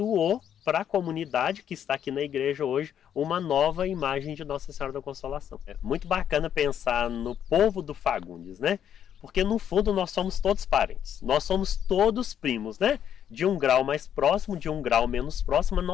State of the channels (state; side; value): quieter; right; 9.4 dB